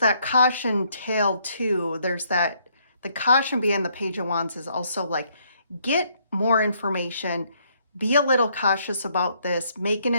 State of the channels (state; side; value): inverted; both; correlation -0.70